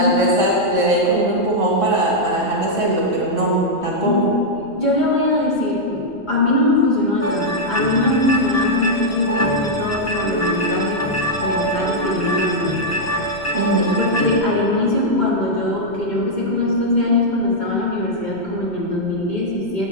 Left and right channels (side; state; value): left; noise; rumble, 30 dB below the sound